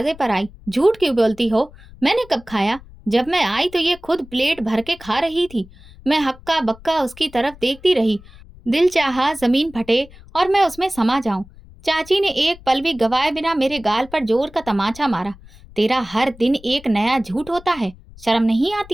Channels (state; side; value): noise; left; rumble, 21 dB below the sound